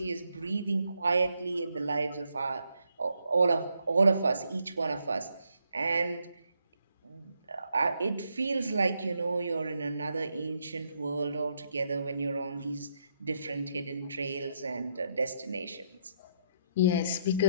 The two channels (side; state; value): both; inverted; correlation -0.76